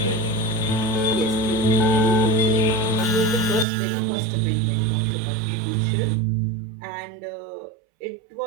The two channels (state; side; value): drops out; left; at 3.7 s